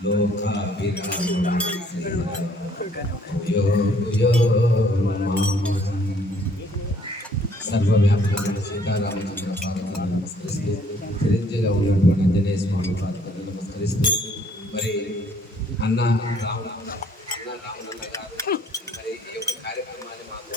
लोकाभिरामं यो సర్వవ్యాపకమైన సీతారామచంద్ర పాదములను నమస్కరిస్తూ చిరంజీవిగా ఉన్నటువంటి ఆంజనేయ స్వామి పాదములను నమస్కరిస్తూ మరి అన్న రామనన్న గారు మరి ఈ యొక్క కార్యక్రమాన్ని మాకు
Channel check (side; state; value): both; normal; correlation 0.62